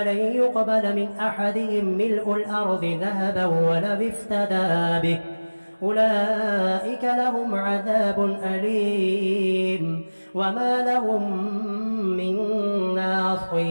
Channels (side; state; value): both; inverted; correlation -1.00